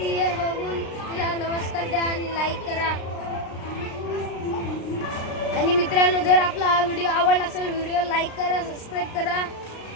बघून तिला नमस्कार द्या आणि लाईक करा. आणि मित्रांनो जर आपला हा व्हिडिओ आवडला असेल व्हिडिओ लाईक करा, सबस्क्राईब करा.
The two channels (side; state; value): right; late; 36 ms